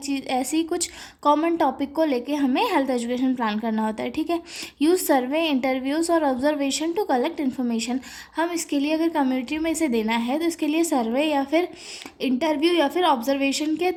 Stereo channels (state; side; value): identical; both; correlation 1.00